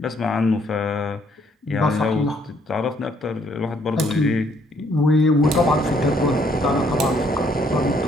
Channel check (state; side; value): normal; both; correlation 0.67